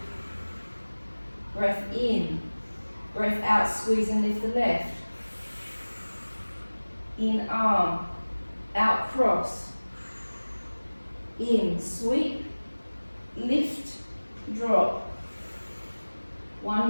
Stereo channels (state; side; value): inverted; both; correlation -1.00